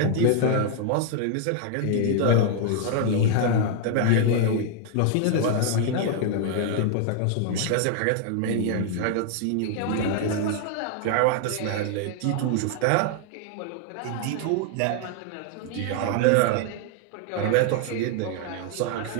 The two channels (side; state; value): both; different; correlation 0.00